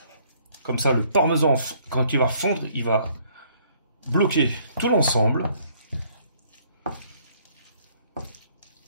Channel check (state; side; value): inverted; both; correlation -0.63